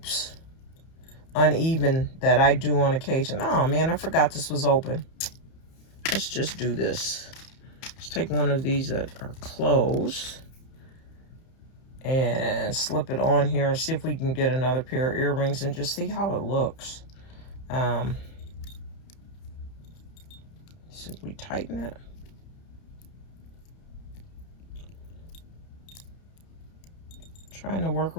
uneven that I do on occasion. Oh, man, I forgot this was open. Let's just do this. Let's take one of these that are closed and slip it on here and see if we can get another pair of earrings and just see how it looks. See if we tighten it. Trying to work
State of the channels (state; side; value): late; right; 31 ms